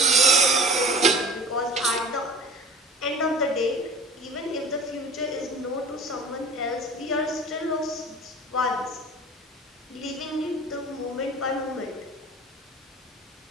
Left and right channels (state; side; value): normal; both; correlation 0.41